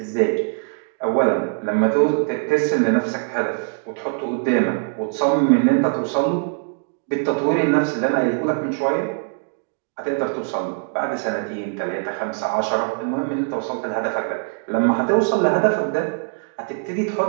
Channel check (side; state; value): left; silent; 64 dB below the other